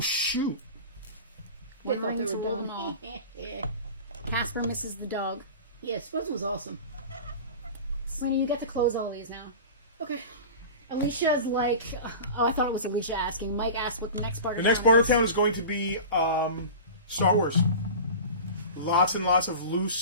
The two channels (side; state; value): both; inverted; correlation -0.34